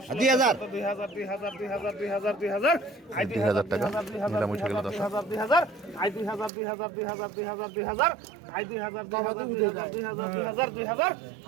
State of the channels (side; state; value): left; drops out; at 6.5 s